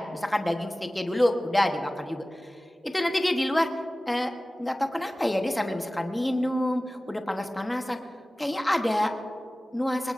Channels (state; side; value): normal; both; correlation 0.97